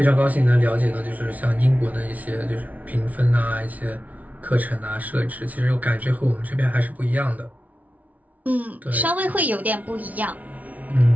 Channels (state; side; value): late; left; 0.072 ms